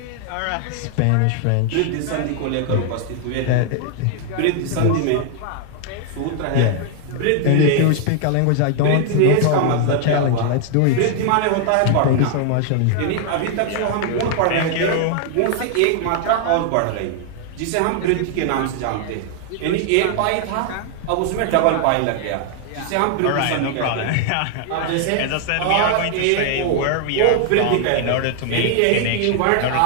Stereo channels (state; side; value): different; both; correlation 0.00